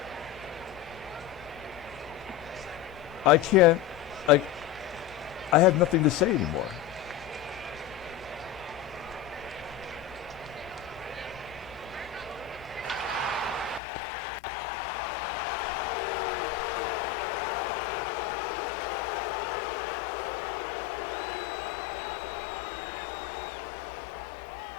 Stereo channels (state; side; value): drops out; right; at 13.8 s